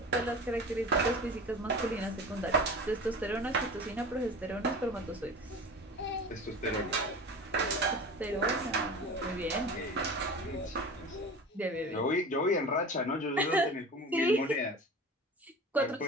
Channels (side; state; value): both; normal; correlation 0.35